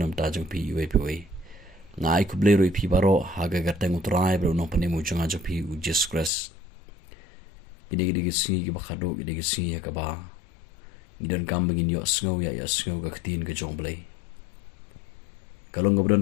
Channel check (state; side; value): drops out; right; at 6.3 s